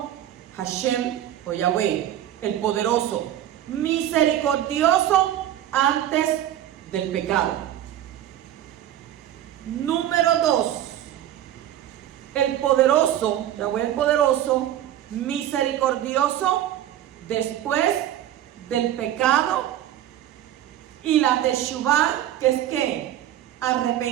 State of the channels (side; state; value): left; quieter; 12.0 dB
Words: Hashem o Yahweh, el poderoso, misericordioso antes del pecado. Número 2, el poderoso, Yahweh el poderoso, misericordioso después del pecado, y la teshuvah, que es ¿qué?